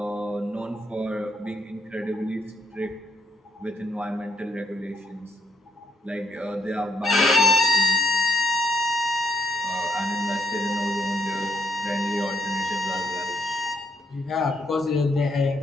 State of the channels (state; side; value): normal; both; correlation 0.73